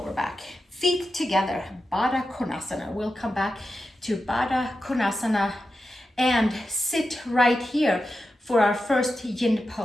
back. Feet together, Baddha Konasana. We'll come back to Baddha Konasana and sit right here for our first yin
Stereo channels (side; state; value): both; normal; correlation 0.90